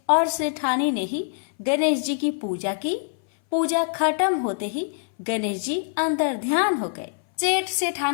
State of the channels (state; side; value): silent; right; 60 dB below the other